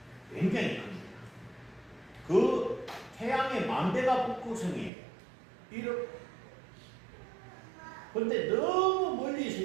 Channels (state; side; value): drops out; left; at 4.9 s